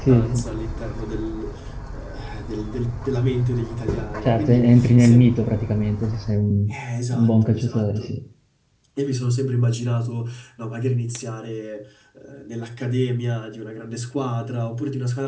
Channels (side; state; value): both; identical; correlation 1.00